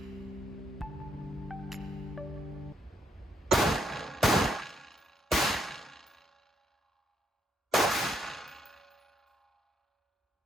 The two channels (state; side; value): normal; both; correlation 0.75